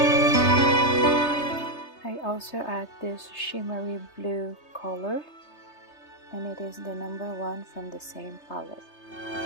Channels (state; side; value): late; right; 3.3 ms